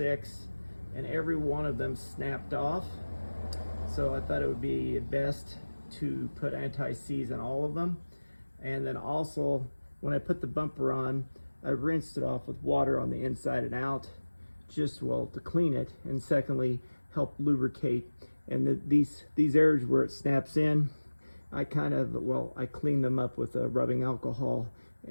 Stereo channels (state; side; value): inverted; both; correlation -1.00